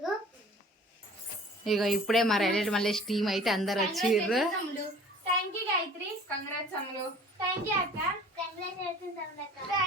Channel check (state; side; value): normal; both; correlation 0.47